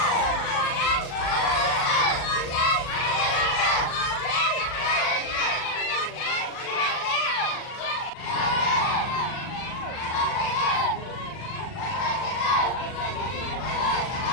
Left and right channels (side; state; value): right; late; 39 ms